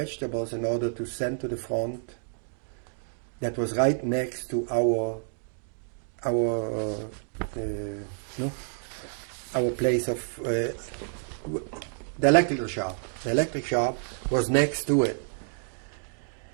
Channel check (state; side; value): silent; left; digital silence